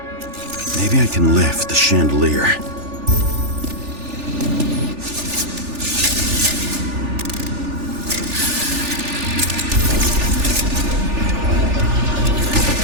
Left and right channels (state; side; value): late; left; 3.4 ms